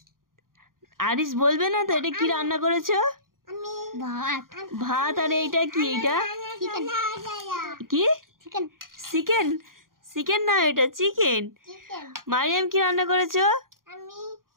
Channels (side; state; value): left; late; 0.91 ms